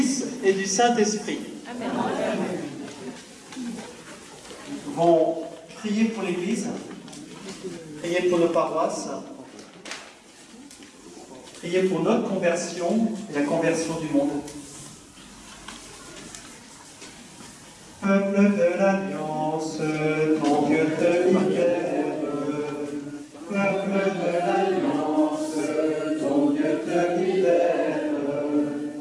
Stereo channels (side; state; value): both; identical; correlation 1.00